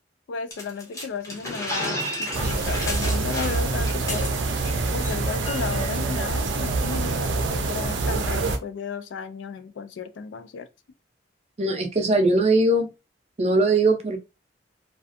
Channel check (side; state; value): both; normal; correlation 0.47